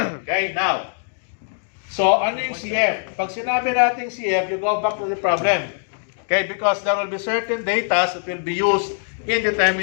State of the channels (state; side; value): silent; right; digital silence